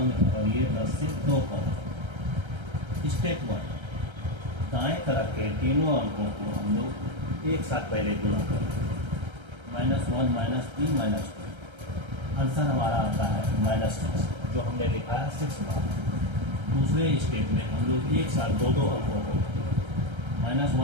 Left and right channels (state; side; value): late; left; 1.3 ms